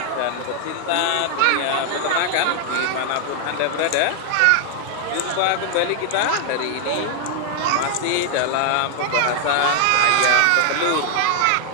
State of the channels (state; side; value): different; both; correlation 0.00